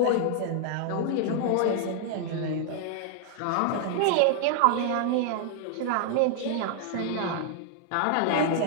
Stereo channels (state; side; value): different; both; correlation 0.00